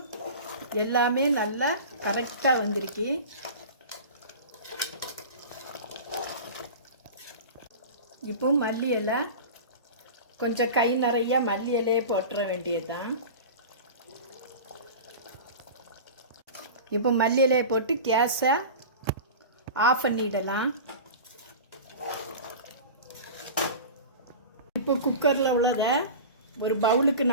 எல்லாமே நல்லா கரெக்டாக வந்திருக்கு. இப்போ மல்லி இலை கொஞ்சம் கை நிறைய மல்லி இலையே போட்டுற வேண்டியது தான். இப்போ மல்லி இலையை போட்டு கேஸை ஆஃப் பண்ணிடலாம். இப்போ குக்கரில் உள்ளதை ஒரு பவுலுக்கு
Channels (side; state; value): both; inverted; correlation -0.33